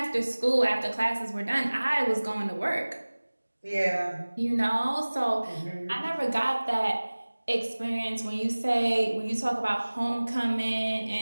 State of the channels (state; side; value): inverted; both; correlation -1.00